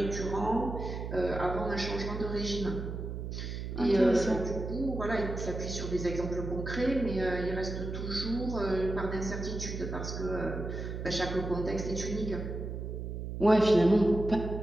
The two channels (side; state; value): right; noise; hum, 6 dB below the sound